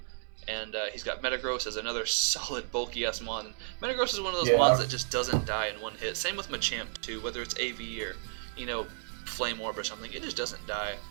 And he's got Metagross as another solid bulky ass Mon. Metagross is one of those Mons that just doesn't die in one hit. Same with Machamp too, whether it's AV or Flame Orb or something, it just doesn't die.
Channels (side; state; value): left; silent; 56 dB below the other